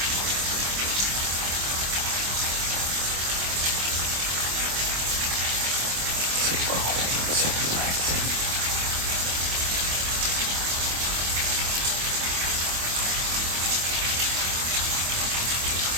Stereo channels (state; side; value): late; left; 25 ms